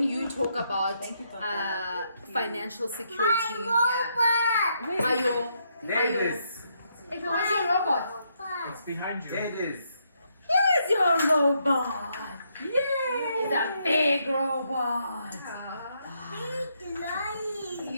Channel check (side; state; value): both; inverted; correlation -0.76